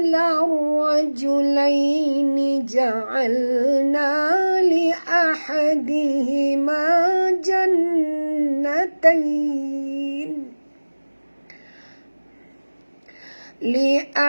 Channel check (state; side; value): inverted; both; correlation -1.00